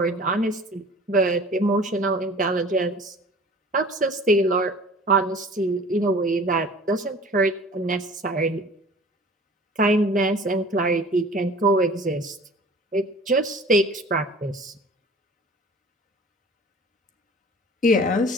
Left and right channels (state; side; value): normal; both; correlation 0.45